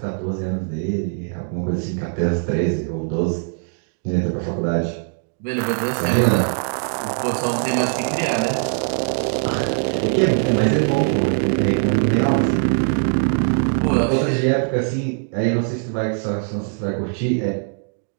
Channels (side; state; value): left; silent; 65 dB below the other